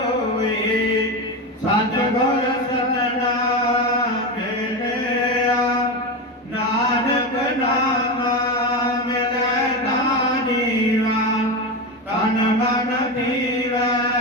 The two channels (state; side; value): normal; both; correlation 0.18